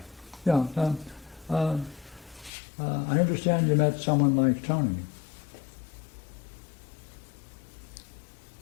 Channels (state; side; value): drops out; right; at 2.5 s